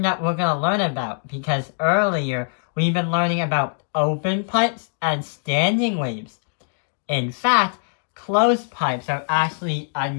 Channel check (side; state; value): right; silent; digital silence